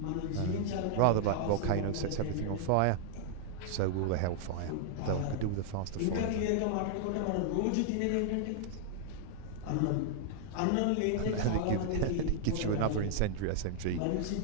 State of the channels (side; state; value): both; different; correlation -0.01